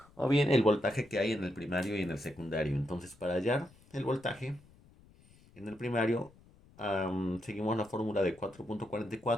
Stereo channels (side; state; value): left; noise; rumble, 26 dB below the sound